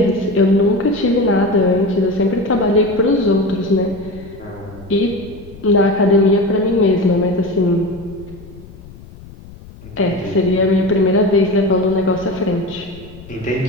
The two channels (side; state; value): left; noise; rumble, 19 dB below the sound